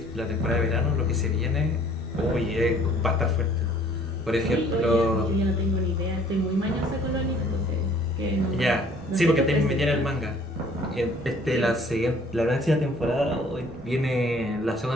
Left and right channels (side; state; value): both; normal; correlation 0.56